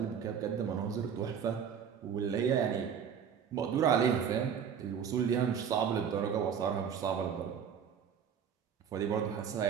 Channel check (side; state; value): left; quieter; 7.6 dB